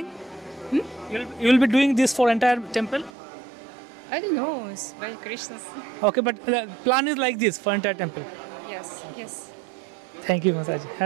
You'll be doing this for entire temple? I don't know, it's by Krishna's. Okay, but the plan is like this for entire temple. Yes, yes. Thank you, Mataji.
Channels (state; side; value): drops out; left; at 3.1 s